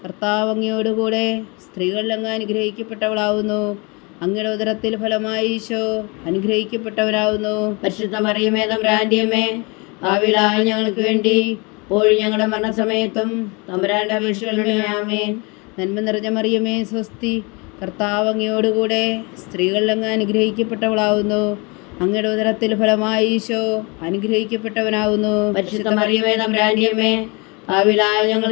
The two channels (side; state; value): right; quieter; 29.0 dB